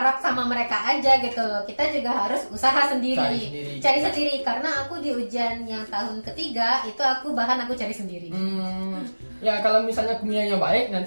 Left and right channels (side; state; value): both; inverted; correlation -1.00